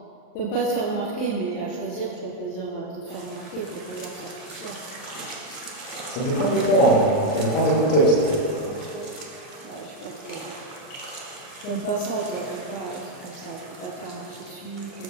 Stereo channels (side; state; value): right; late; 39 ms